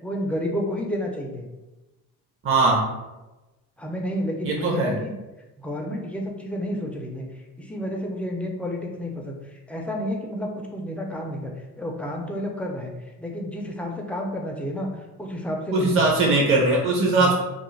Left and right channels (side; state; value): both; normal; correlation 0.32